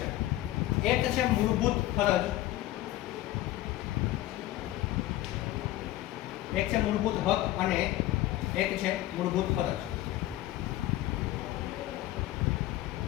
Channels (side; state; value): right; quieter; 15.5 dB